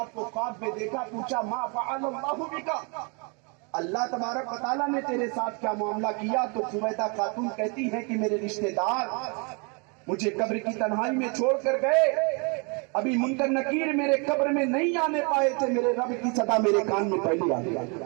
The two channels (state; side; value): quieter; left; 33.5 dB